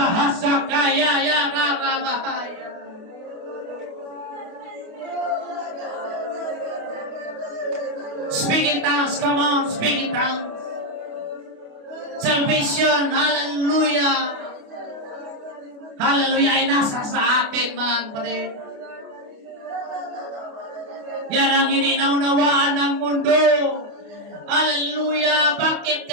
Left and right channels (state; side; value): late; left; 28 ms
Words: Ya Rabahaya. Speak in tongues, come on, speak in tongues. Salvation, hallelujah. Hallelujah, ay nasa sa atin, mga kapatid. Yan ang ininaunnawaan ng mundo. Hallelujah, bakit